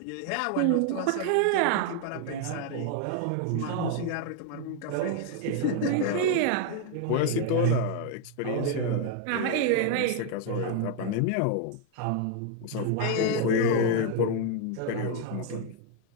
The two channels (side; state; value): both; different; correlation 0.00